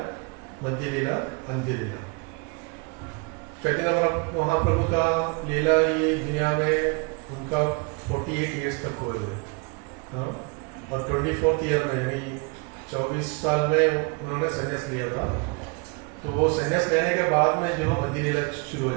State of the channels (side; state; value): left; quieter; 31.7 dB